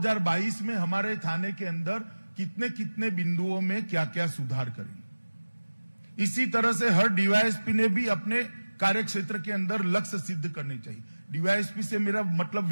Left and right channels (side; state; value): both; inverted; correlation -1.00